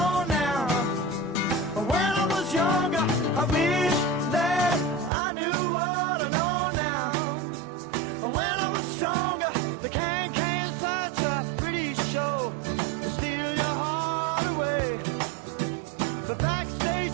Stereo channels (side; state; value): left; drops out; at 5.1 s